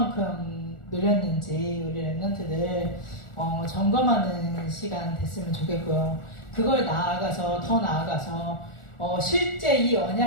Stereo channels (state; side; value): late; right; 1.4 ms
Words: 누렸는지 우리 랩런트들 점검하는 시간 됐으면 좋겠고요. 그걸 더 나아가서 실제 이